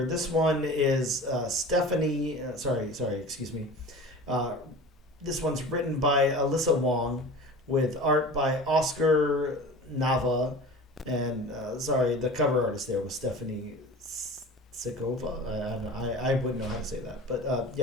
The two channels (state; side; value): normal; both; correlation 0.37